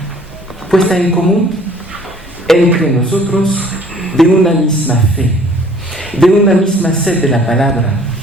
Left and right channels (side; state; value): both; normal; correlation 0.55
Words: puesta en común entre nosotros de una misma fe, de una misma sed de la palabra,